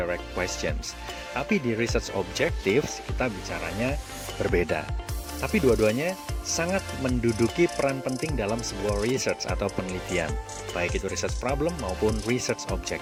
questions. Tapi di research objectives kita bicaranya berbeda. Tapi dua-duanya sangat menduduki peran penting dalam sebuah research atau penelitian, baik itu research problem maupun research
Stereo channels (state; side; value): identical; both; correlation 1.00